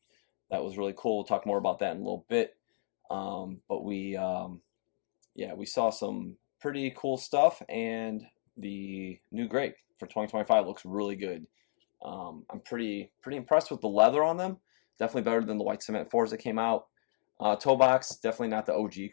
That was really cool. We'll talk more about that in a little bit. But we saw some pretty cool stuff, and the new grape for 2025 looks really good. I'm pretty impressed with the leather on them. Definitely better than the white cement 4s that came out. Toe box, definitely not the OG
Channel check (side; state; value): right; silent; digital silence